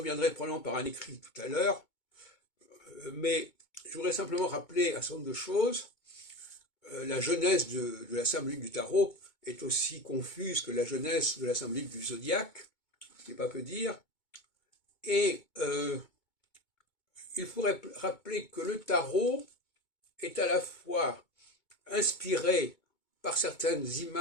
probablement par un écrit tout à l'heure, mais je voudrais simplement rappeler un certain nombre de choses. La genèse de la symbolique du tarot est aussi confuse que la genèse de la symbolique du zodiaque, ce qui n'est pas peu dire. Et il faudrait rappeler que le tarot est à la fois inspiré par certaines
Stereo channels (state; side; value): late; right; 2.2 ms